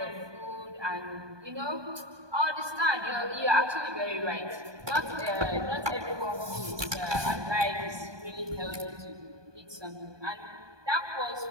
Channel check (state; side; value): late; left; 1.2 ms